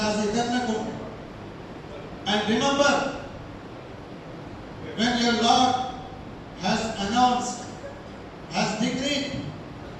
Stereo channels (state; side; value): identical; both; correlation 1.00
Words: And remember, when your Lord has announced, has decreed